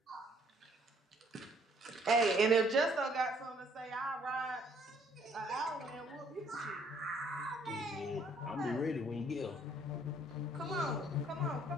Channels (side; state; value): both; normal; correlation 0.63